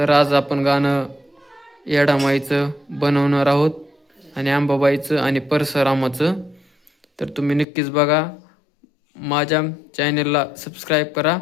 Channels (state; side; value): drops out; right; at 7.7 s